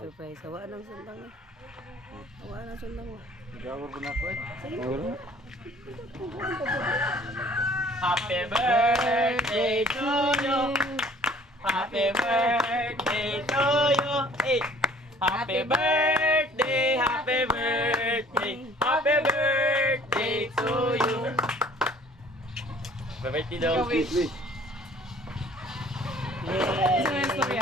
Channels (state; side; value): normal; both; correlation 0.53